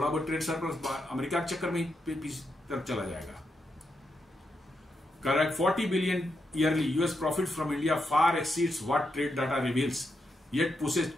बहुत ट्रेड सरप्लस अमेरिका के चक्कर में तरफ चला जाएगा। Correct, 40 billion yearly US profit from India far exceeds what trade data reveals, yet pushes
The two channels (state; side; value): normal; both; correlation 0.83